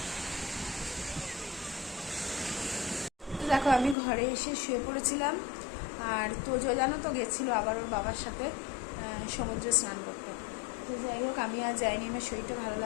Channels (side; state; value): right; drops out; at 4.0 s